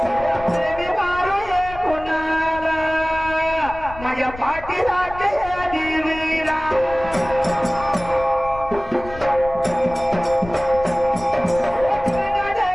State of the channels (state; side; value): noise; left; rumble, 14 dB below the sound